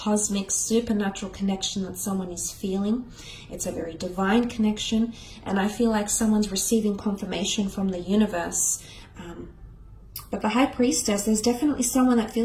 supernatural connection that someone is feeling. It's a very divine connection. And I feel like someone's receiving confirmation from the universe. But the High Priestess, there's definitely someone that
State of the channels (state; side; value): identical; both; correlation 1.00